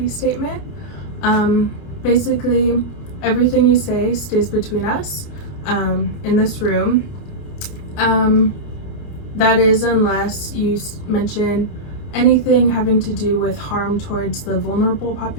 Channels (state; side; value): late; right; 29 ms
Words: statement. Basically, everything you say stays between us in this room. That is unless you mention anything having to do with harm towards the vulnerable